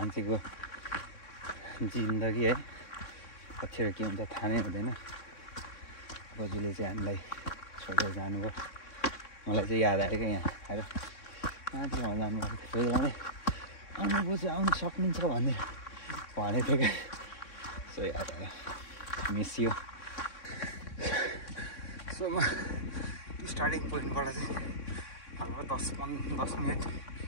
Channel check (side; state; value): right; late; 3.6 ms